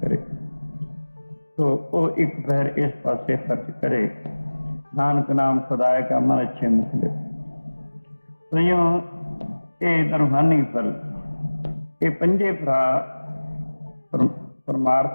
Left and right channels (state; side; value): inverted; both; correlation -1.00